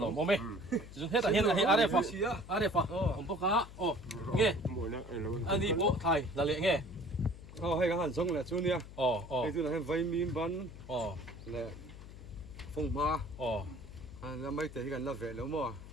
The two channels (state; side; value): noise; left; hum, 15 dB below the sound